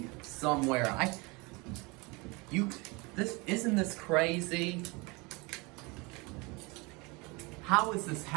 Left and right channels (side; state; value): left; quieter; 26.8 dB